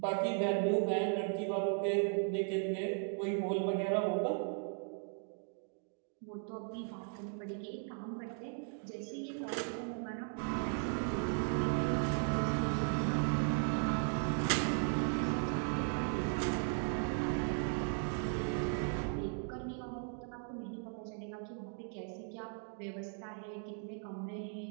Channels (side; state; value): left; silent; 53 dB below the other